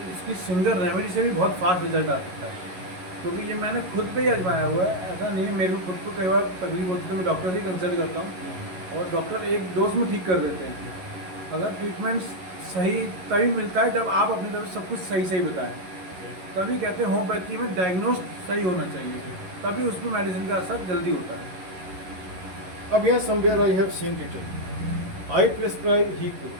सिंगल रेमेडी से भी बहुत फास्ट रिजल्ट आ सकता है. क्योंकि ये मैंने खुद पे ही आजमाया हुआ है. ऐसा नहीं है, मेरे को खुद को कई बार तकलीफ होती है तो मैं डॉक्टर ही कंसल्ट करता हूँ और डॉक्टर एक डोज में ठीक कर देते हैं. अगर ट्रीटमेंट सही तभी मिलता है जब आप अपनी तरफ से सब कुछ सही सही बताएं. तभी कहते हैं होम्योपैथी में डायग्नोस सही होना चाहिए, तभी उस पर मेडिसिन का असर जल्दी होता है. अब यहाँ somewhere I have seen written, I prescribe he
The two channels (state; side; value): late; left; 11 ms